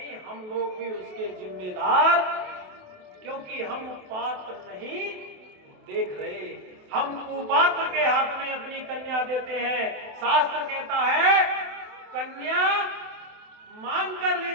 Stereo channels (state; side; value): late; left; 28 ms